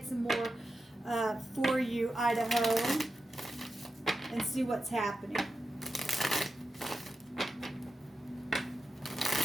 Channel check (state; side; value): normal; both; correlation 0.90